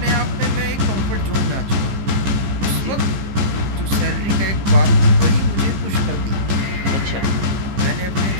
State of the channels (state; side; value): late; left; 15 ms